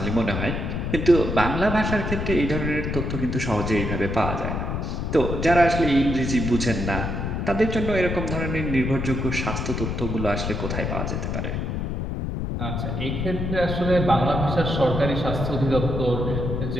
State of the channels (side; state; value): left; noise; rumble, 2 dB below the sound